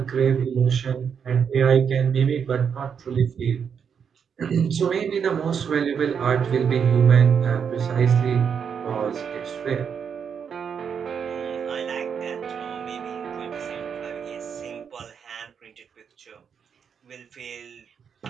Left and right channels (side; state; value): left; quieter; 7.1 dB